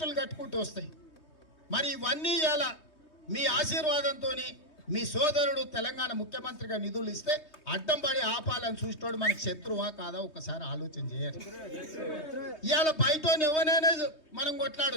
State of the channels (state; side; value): late; right; 3.2 ms